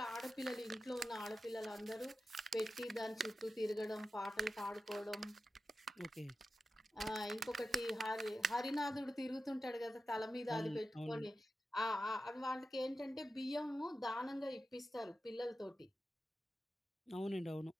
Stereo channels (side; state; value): both; normal; correlation 0.93